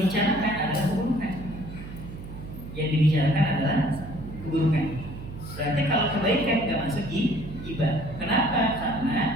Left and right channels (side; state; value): right; noise; hum, 11 dB below the sound